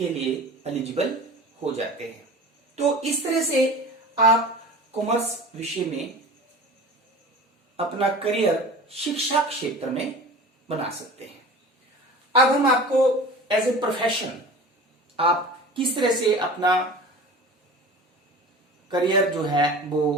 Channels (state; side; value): normal; both; correlation 0.38